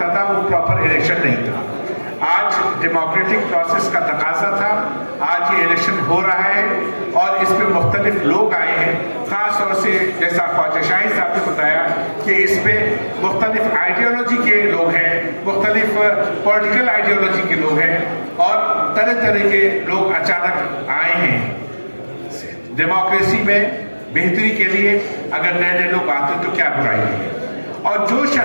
था, वो प्रॉपर इलेक्शन नहीं था। आज डेमोक्रेटिक प्रोसेस का तकाजा था, आज ये इलेक्शन हो रहा है और इस पे मुख्तलिफ लोग आए हैं, खास तौर से जैसा ख्वाजा शाहिद साहब ने बताया कि इस पे मुख्तलिफ आइडियोलॉजी के लोग हैं, मुख्तलिफ पॉलिटिकल आइडियोलॉजी के लोग हैं और तरह तरह के लोग अचानक आए हैं। डेमोक्रेसी में बेहतरी के लिए अगर नए नए लोग आते हैं तो क्या बुराई है। और जो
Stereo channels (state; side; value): inverted; both; correlation -1.00